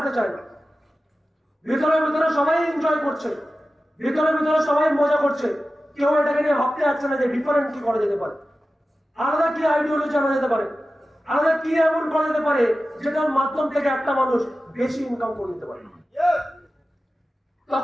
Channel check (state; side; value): normal; both; correlation 0.94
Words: চায় না। ভিতরে ভিতরে সবাই এনজয় করছে, ভিতরে ভিতরে সবাই মজা করছে। কেউ এটাকে নিয়ে ভাবতে যাচ্ছে না যে ডিফারেন্ট কি করা যেতে পারে, আলাদা কি আইডিওলজি আনা যেতে পারে, আলাদা কি এমন করা যেতে পারে যেটার মাধ্যম থেকে একটা মানুষ বেশি ইনকাম করে নিতে পারে।